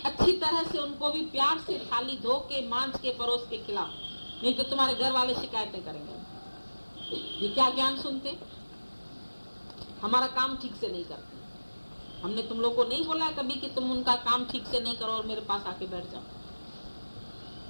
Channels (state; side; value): inverted; both; correlation -1.00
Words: अच्छी तरह से उनको भी प्यार से थाली धो के मांझ के परोस के खिलाओ, नहीं तो तुम्हारे घर वाले शिकायतें करेंगे। ये क्या ज्ञान सुनते, हमारा काम ठीक से नहीं करते। हमने तुम लोग को नहीं बोला है कभी कि तुम उनका काम ठीक से नहीं करो और मेरे पास आके बैठ जाओ।